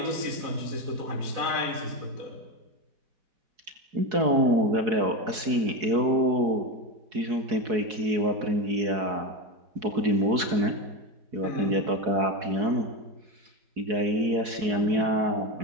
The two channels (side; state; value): left; late; 4.7 ms